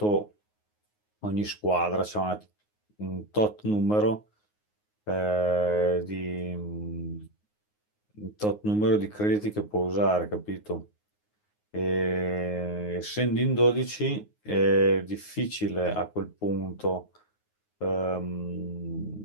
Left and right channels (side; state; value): right; late; 9.5 ms